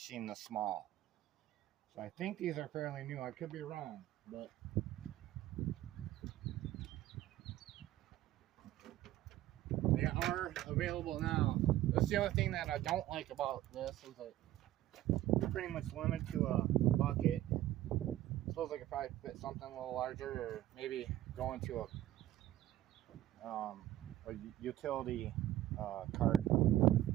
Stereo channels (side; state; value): left; quieter; 14.0 dB